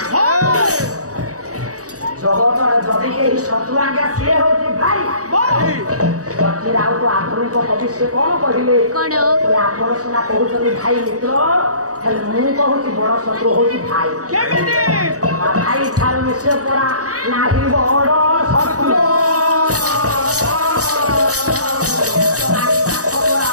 ଜଗତରେ ଯଦି କେହି ଶତ୍ରୁ ଆଜ୍ଞା ସିଏ ହଉଛି ଭାଇ। ଆଉ ତ ଆଧୁନିକ କବି ସେ କଣ କହିଲେ? ଆପଣ ସିନା କହୁଛନ୍ତି ଭାଇ ମିତ୍ର, ହେଲେ ମୁଁ କହୁଛି ବଡ ଶତ୍ରୁ ହଉଛି ଭାଇ। ଭାଇ ଠାରୁ ମିଶେ ପରା ନାହିଁ ବଡ ଶତ୍ରୁ।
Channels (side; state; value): left; late; 0.66 ms